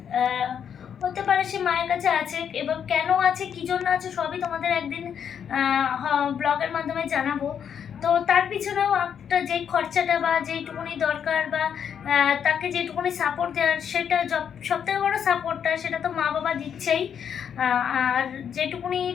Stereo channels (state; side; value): quieter; right; 8.1 dB